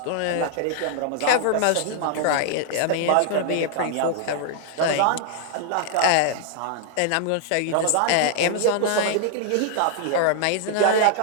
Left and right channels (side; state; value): both; different; correlation -0.01